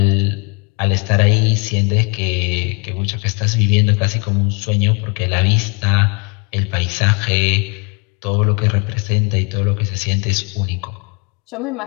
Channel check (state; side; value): quieter; right; 33.8 dB